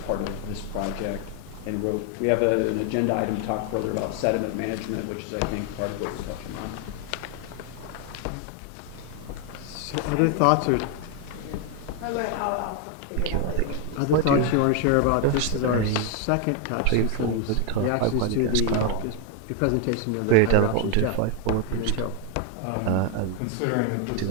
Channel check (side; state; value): both; different; correlation 0.01